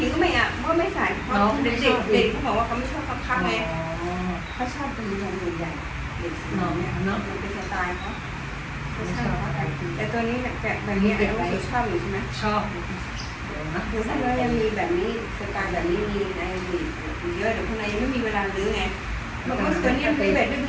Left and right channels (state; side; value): identical; both; correlation 1.00